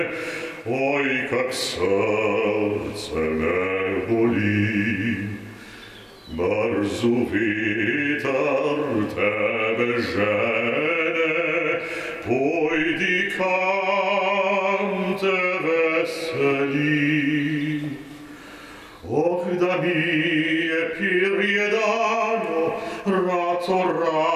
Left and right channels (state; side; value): identical; both; correlation 1.00